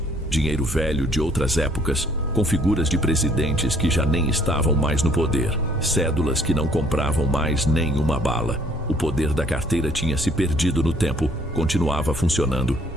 dinheiro velho de outras épocas, com figuras de presidentes que já nem estavam mais no poder, cédulas que não compravam mais nem uma bala. O poder da carteira tinha se perdido no tempo, continuava funcionando,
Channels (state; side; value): normal; both; correlation 0.62